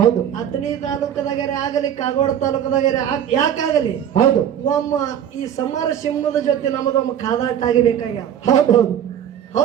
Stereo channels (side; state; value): left; quieter; 9.6 dB